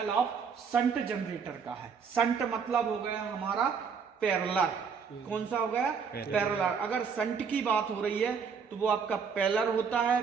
of shunt generator का है। शंट मतलब हो गया हमारा पैरेलल। कौन सा हो गया, पैरेलल। अगर शंट की बात हो रही है तो वो आपका पैरेलल होता है,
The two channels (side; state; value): left; quieter; 6.1 dB